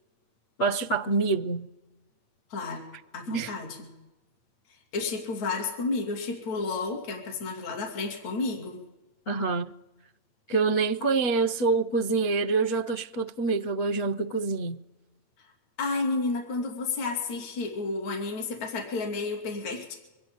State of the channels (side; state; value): right; late; 8.8 ms